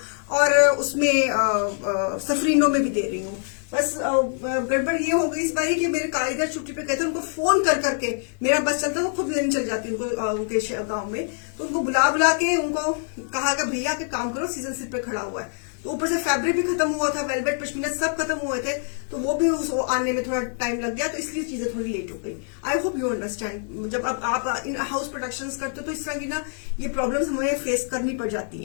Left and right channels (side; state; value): right; silent; 56 dB below the other